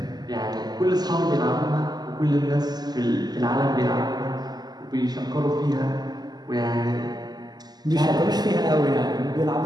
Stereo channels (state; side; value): late; left; 0.20 ms